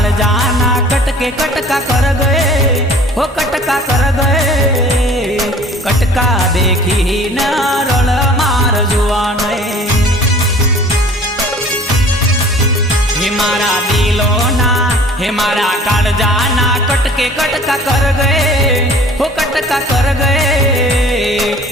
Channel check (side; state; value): both; normal; correlation 0.49